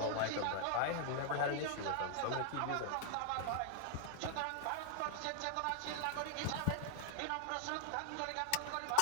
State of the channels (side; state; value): both; different; correlation 0.00